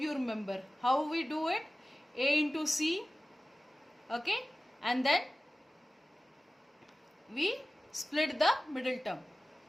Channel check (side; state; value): both; normal; correlation 0.96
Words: remember how we do it. A into C. Okay. And then we split the middle term.